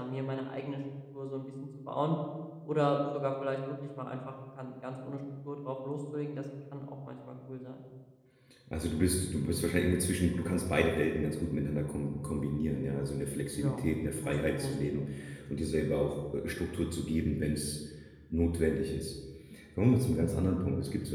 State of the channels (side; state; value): both; identical; correlation 1.00